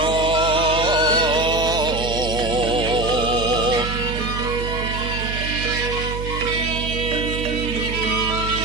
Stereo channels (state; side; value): noise; right; hum, 6 dB below the sound